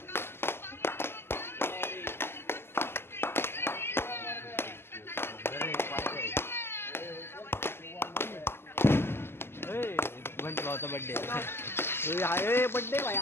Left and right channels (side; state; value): right; late; 0.12 ms